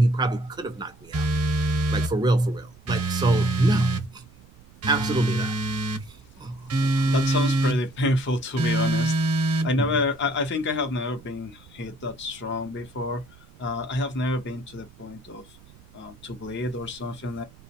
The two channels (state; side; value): noise; right; rumble, 24 dB below the sound